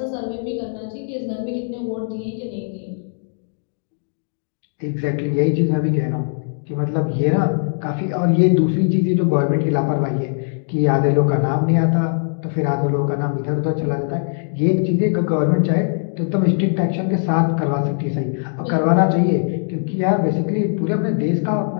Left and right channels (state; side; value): silent; right; digital silence